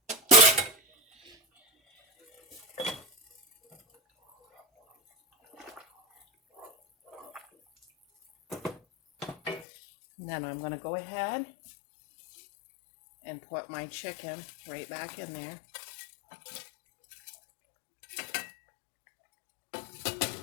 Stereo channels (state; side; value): drops out; right; at 9.7 s